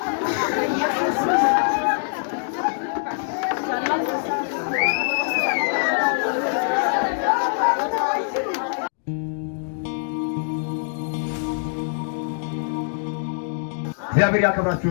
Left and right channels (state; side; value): silent; right; digital silence